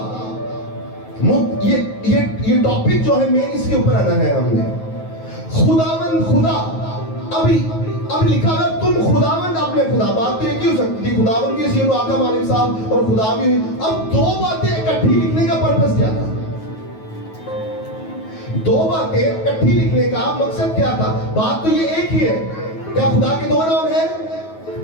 یہ ٹاپک جو ہے مین اس کے اوپر آنا ہے ہم نے۔ خداوند خدا، ابھی لکھا ہے تم خداوند اپنے خدا، بات تو یہ کیوں سکتی تھی، خداوند کی سینو آقا مالک صاحب اور خدا بھی ہوئی۔ اب 2 باتیں اکٹھی لکھنے کا پرپس کیا تھا؟ 2 باتیں اکٹھی لکھنے کا مقصد کیا تھا؟ بات تو یہ ایک ہی ہے، کیا خدا کے 2 نام ہیں؟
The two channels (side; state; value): right; late; 9.3 ms